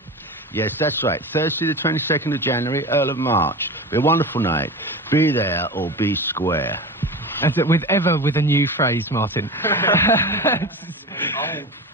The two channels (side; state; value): both; normal; correlation 0.29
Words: Yes, that's right. Thursday the 22nd of January, Earl of March. Be a wonderful night. Be there or be square. As it with a new phrase, Martin. Old